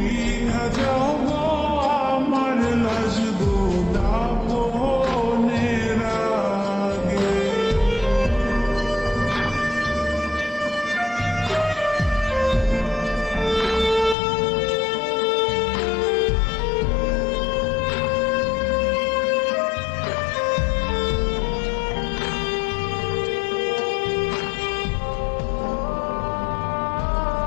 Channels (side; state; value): right; drops out; at 14.2 s